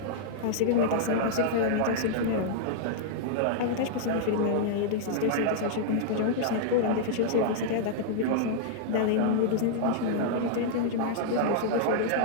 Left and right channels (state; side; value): different; both; correlation -0.01